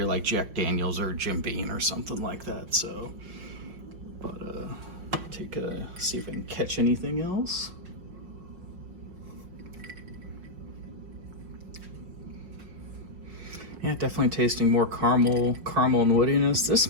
like Jack Daniels or Jim Beam or something like that. So, but see if I can catch anything else. Yeah, definitely tasting more caramel and woodiness. This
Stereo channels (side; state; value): left; late; 5.5 ms